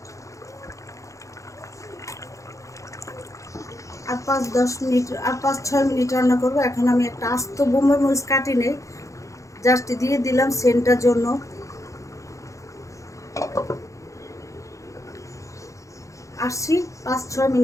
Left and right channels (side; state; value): right; late; 0.15 ms